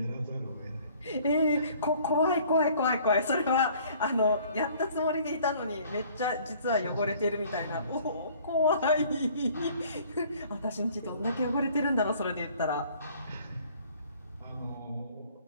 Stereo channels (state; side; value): inverted; both; correlation -0.55